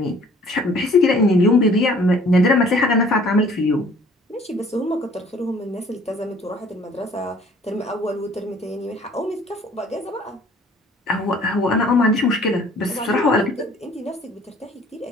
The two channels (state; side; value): normal; both; correlation 0.54